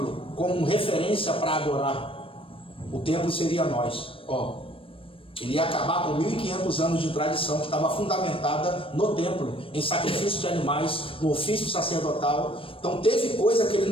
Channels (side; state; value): right; late; 0.26 ms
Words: como referência para adorar. O templo seria nós. Ele ia acabar com 1500 anos de tradição que estava fundamentada no templo, em sacrifício de animais, no ofício sacerdotal. Então teve coisa que ele